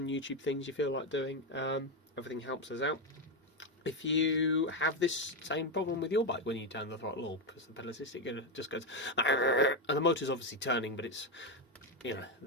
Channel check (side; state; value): both; normal; correlation 0.08